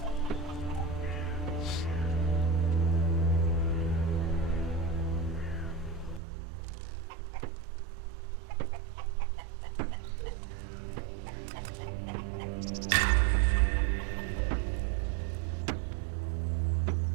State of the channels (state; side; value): drops out; left; at 6.2 s